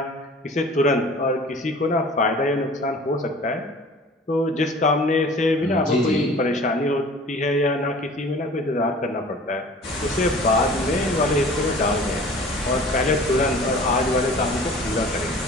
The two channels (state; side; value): normal; both; correlation 0.45